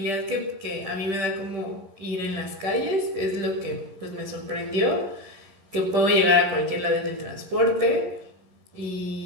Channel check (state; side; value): late; left; 10 ms